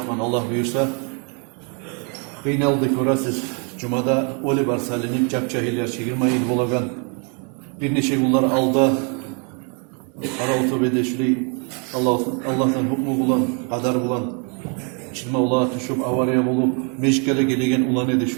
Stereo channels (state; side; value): quieter; left; 37.3 dB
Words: Allah buyursa. Kıynaldık göre siz Cuma'da oli var salinip capcahiller çekirmeyin bolagan bir neçe kullar aldı ara otobede şurayı Allah'tan hukmu bulan, kadar bulan çilme ula tuşup avariya bulup meşkele gelegen ulan edi